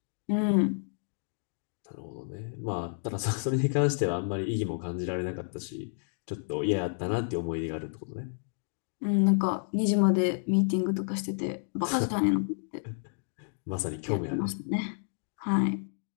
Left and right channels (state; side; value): silent; right; digital silence